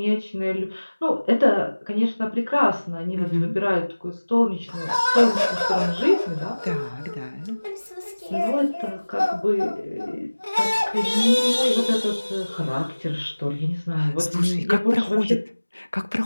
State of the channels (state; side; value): inverted; both; correlation -1.00